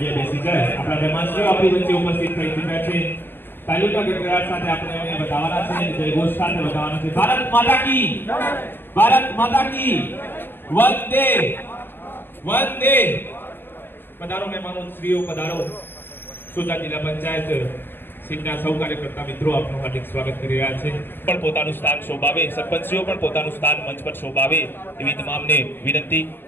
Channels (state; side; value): late; right; 0.10 ms